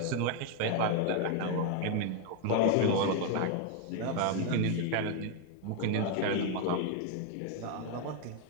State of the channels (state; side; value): different; both; correlation 0.01